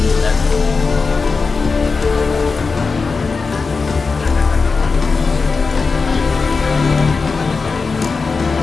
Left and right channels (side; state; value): right; quieter; 4.5 dB